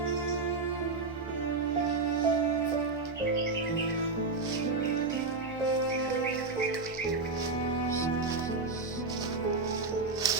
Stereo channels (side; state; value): left; quieter; 3.9 dB